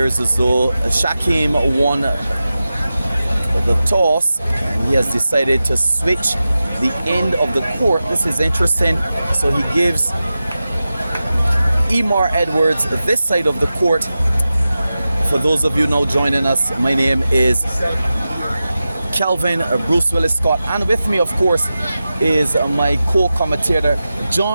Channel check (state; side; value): inverted; both; correlation -0.94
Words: as though Shakeem won the toss, and he has decided to switch the end of the court. This is interesting. So he gives Emar Edwards this side of the court. For those of you now joining us, my name is Kelvin Bruce Willis Scott, and with me, of course, is my co-commentator